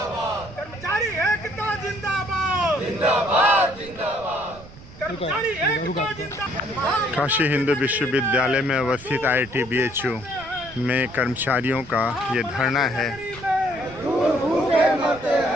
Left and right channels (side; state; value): right; noise; rumble, 19 dB below the sound